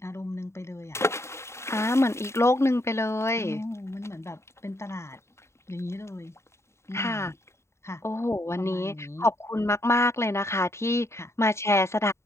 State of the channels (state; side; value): late; right; 0.13 ms